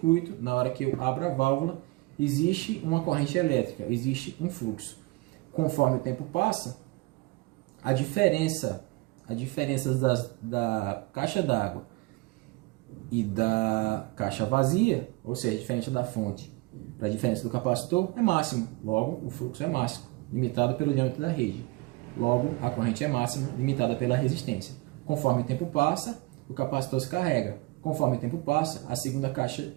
na hora que eu abro a válvula, existe uma corrente elétrica, existe um fluxo. Conforme o tempo passa, a diferença da caixa d'água e da caixa vazia, ou seja, diferente da fonte para a diferença do capacitor, é máxima. Logo, o fluxo é máximo, limitado pelo diâmetro da rede. Logo, a corrente é máxima, limitada pela resistência. Conforme o tempo passa, o capacitor se carrega. Conforme o tempo passa, a segunda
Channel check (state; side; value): quieter; left; 22.4 dB